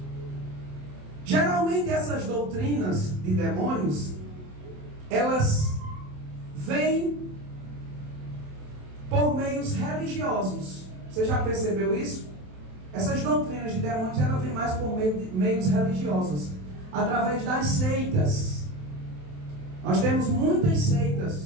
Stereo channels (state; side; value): late; left; 27 ms